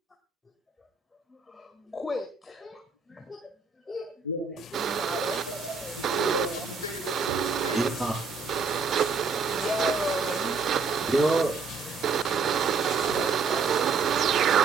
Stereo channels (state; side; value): quieter; left; 5.0 dB